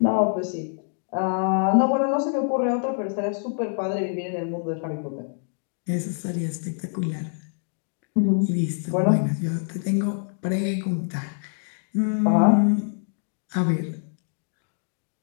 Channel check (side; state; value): right; silent; digital silence